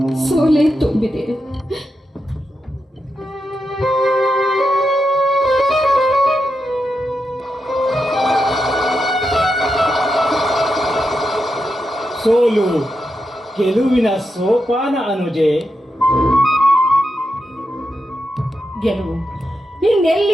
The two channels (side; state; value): both; normal; correlation 0.86